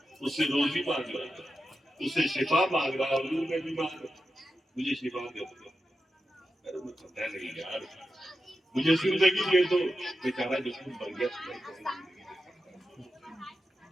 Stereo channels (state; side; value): normal; both; correlation 0.90